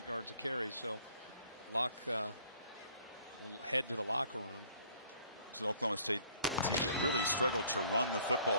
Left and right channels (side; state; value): both; inverted; correlation -0.58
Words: yards a carry. So Locke will head to the locker room. It's an Oklahoma State team that really struggled to run the